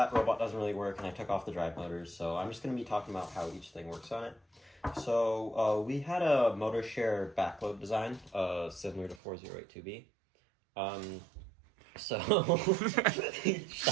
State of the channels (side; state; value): left; drops out; at 9.2 s